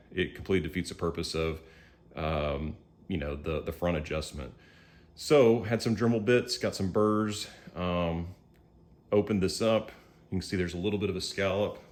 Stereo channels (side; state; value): both; identical; correlation 1.00